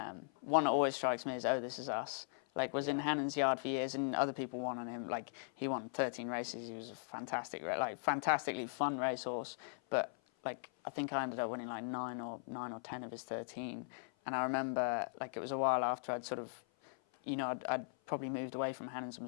One that always strikes me is This Is Us. Like, was in Hannon's yard for years, and other people won on him. Like, he won 13 races. He was a fantastically fun racehorse. But like, I think I ended up winning like 9 or 10 of his 13. And I remember, like, it was a while after I'd sort of, I'd probably moved away from Hannon's and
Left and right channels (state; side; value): silent; right; 52 dB below the other